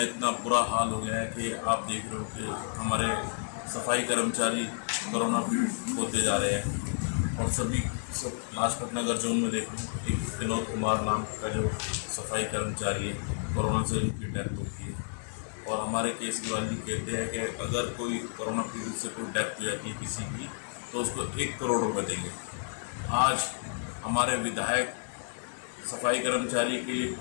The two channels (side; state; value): right; silent; 57 dB below the other